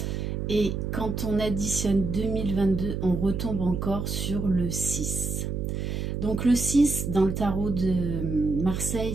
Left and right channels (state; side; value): noise; right; hum, 2 dB below the sound